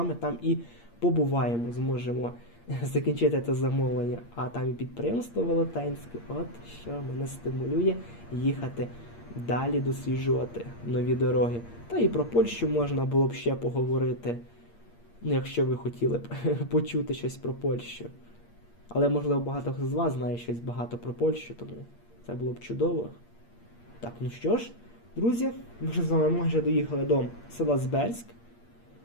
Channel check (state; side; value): late; right; 8.6 ms